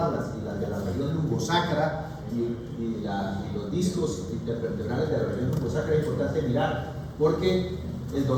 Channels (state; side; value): identical; both; correlation 1.00